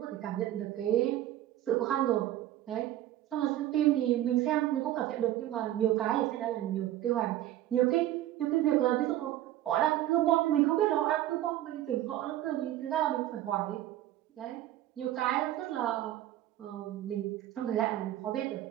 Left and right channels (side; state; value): left; quieter; 13.5 dB